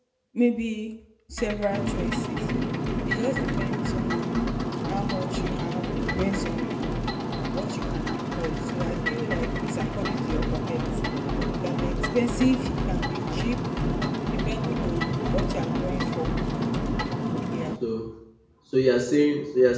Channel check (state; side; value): identical; both; correlation 1.00